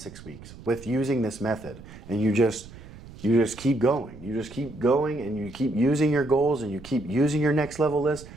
weeks with using this method. And you just keep going. You just keep going, and you keep using your goals, and you keep using your next level list,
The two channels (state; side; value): noise; right; rumble, 17 dB below the sound